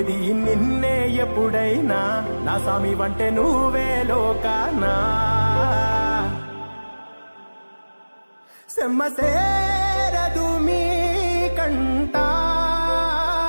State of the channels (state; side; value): inverted; both; correlation -1.00